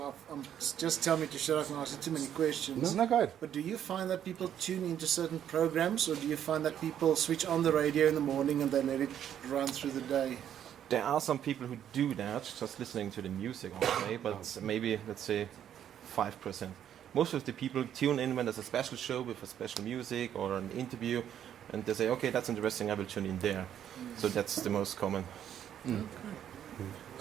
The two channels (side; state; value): left; quieter; 9.9 dB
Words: just tell me to shut up and ask you too many questions. Isn't that good? But do you find that people tune into certain programs, or do you find that people switch on the radio in the morning and they let it run through the day? There are some people who do that, just listening to the music all day, but maybe, let's say, 5%. Most of the people tune in when there's a special show with a special music or an interview, and they say, okay, that's interesting, I will tune in there. So that's the most common.